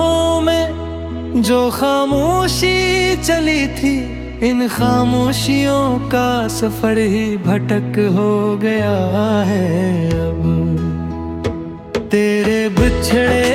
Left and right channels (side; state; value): both; identical; correlation 1.00